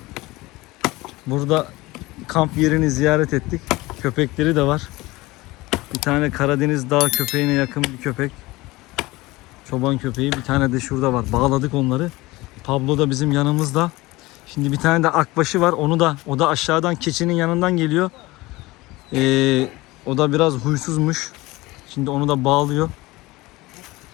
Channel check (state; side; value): quieter; right; 20.6 dB